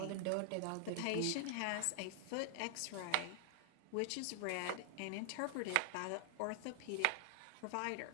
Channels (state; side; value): different; both; correlation -0.01